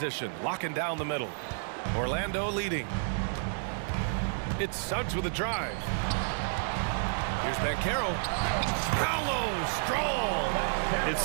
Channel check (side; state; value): left; silent; digital silence